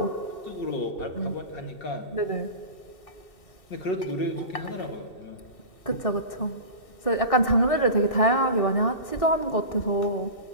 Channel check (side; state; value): right; late; 2.7 ms